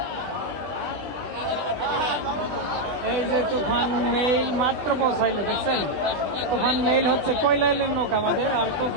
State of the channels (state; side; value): late; left; 20 ms